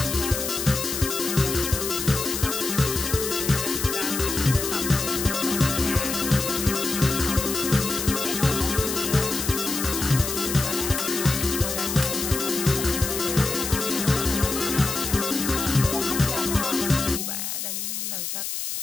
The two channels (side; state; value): left; noise; hiss, 4 dB below the sound